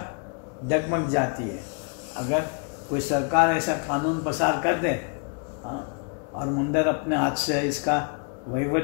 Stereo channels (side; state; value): right; quieter; 39.9 dB